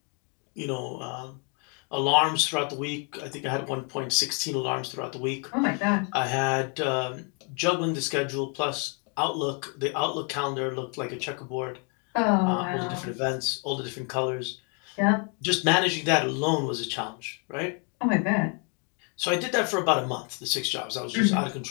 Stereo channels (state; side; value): quieter; right; 37.5 dB